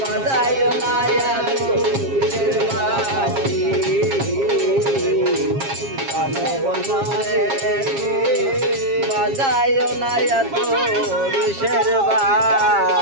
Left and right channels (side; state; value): left; late; 7.4 ms